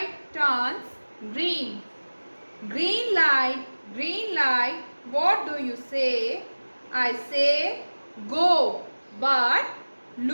turns green. Green light, what do you say? I say, go, but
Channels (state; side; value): inverted; both; correlation -1.00